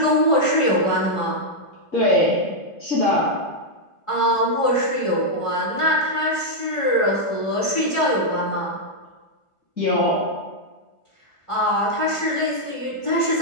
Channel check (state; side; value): late; right; 1.5 ms